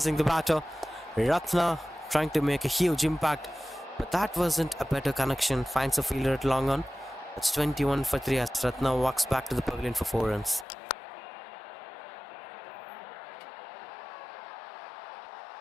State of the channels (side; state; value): right; drops out; at 10.7 s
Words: the batter. Ratna trying to make a huge impact. But that wasn't a better connection. Finds a fielder at long on. That's 21 for 3 as Ratna walks back to the pavilion for 4 runs.